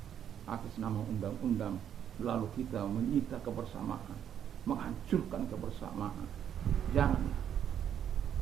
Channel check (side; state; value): left; quieter; 9.4 dB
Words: atas nama undang-undang lalu kita menyita kebersamaan, menghancurkan kebersamaan. Jangan.